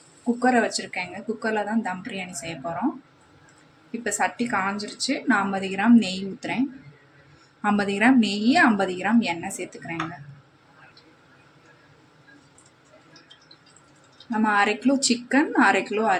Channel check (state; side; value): identical; both; correlation 1.00